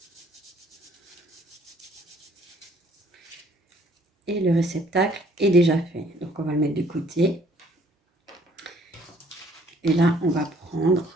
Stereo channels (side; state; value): both; normal; correlation 0.60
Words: Et le réceptacle est déjà fait. Donc on va le mettre de côté. Et là, on va